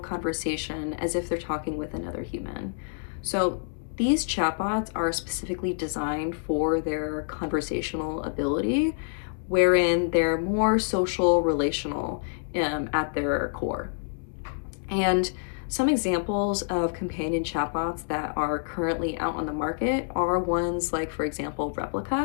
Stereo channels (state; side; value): silent; right; 58 dB below the other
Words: as if they're talking with another human. So these chatbots are specifically designed for their conversational ability, wherein they're more social, relational at their core. And some examples of companion chatbots that are currently out on the market are ones like, for example,